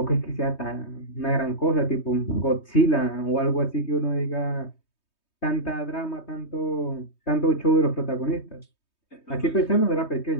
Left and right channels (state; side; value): late; right; 3.2 ms